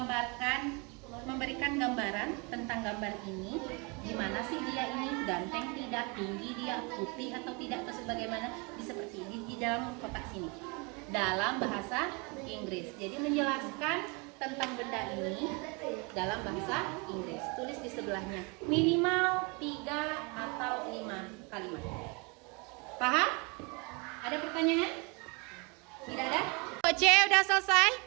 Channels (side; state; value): left; quieter; 30.6 dB